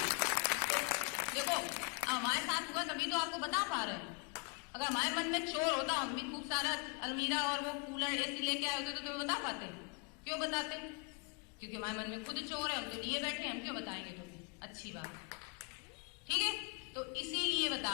तो देखो हमारे साथ हुआ तभी तो आपको बता पा रहे हैं। अगर हमारे मन में चोर होता, हम भी खूब सारा अलमीरा और वो कूलर एसी लेके आए होते तो तुम्हें बता पाते? क्यों बताते? क्योंकि हमारे मन में खुद चोर है, हम तो लिए बैठे हैं, हम क्यों बताएंगे तुम्हें? अच्छी बात। ठीक है, तो इसीलिए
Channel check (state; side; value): quieter; right; 33.5 dB